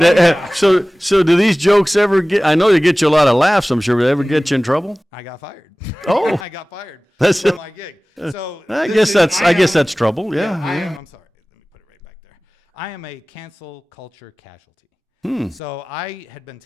So do these jokes ever get, I know they get you a lot of laughs, I'm sure, but they ever get you in trouble? I got fired. Oh. I got fired from my gig. So I guess that's trouble. Yeah. I'm sorry. Let me put it right back there. I am a cancel culture casualty. So I had been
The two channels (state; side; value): normal; both; correlation 0.98